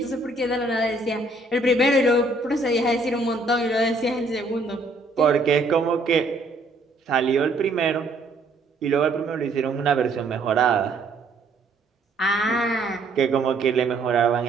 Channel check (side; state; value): left; quieter; 3.1 dB